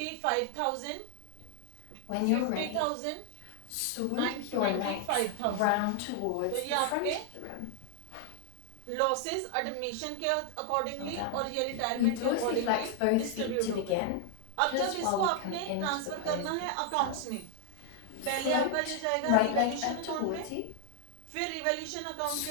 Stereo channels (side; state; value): both; different; correlation 0.00